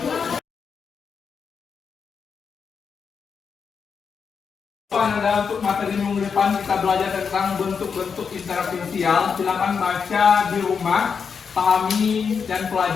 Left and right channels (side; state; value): right; quieter; 6.1 dB